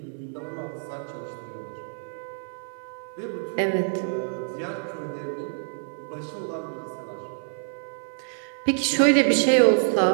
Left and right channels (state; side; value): silent; left; 60 dB below the other